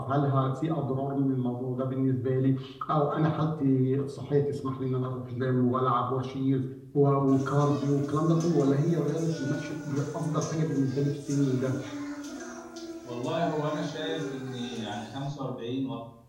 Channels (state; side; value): identical; both; correlation 1.00